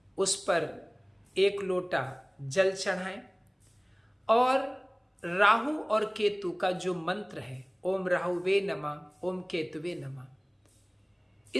उस पर 1 लोटा जल चढ़ाएं और राहु और केतु का जो मंत्र है, ओम राहुवे नमः, ओम केतुवे नमः,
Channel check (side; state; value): both; identical; correlation 1.00